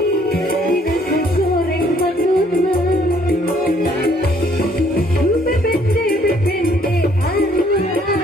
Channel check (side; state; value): both; normal; correlation 0.64